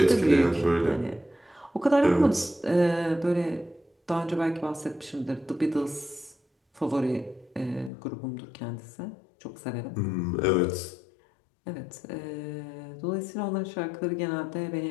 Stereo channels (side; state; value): right; drops out; at 7.9 s